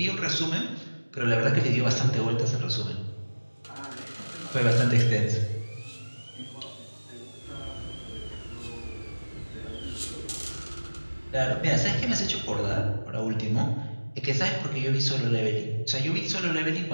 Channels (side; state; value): both; inverted; correlation -1.00